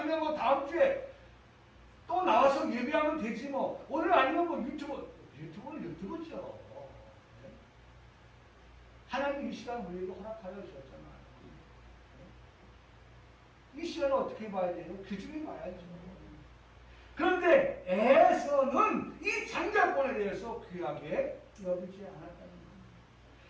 뭐 다음 주에 또 나와서 예배하면 되지 뭐. 오늘 아니면 뭐 유튜브는 유튜브죠. 하나님 이 시간 우리에게 허락하여 주셨잖아요. 이 시간을 어떻게 봐야 돼요? 귀중히 봐야죠. 그런데 에서는 이 장자권에 대해서 귀하게 여기지 않았다는 겁니다.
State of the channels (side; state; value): both; identical; correlation 1.00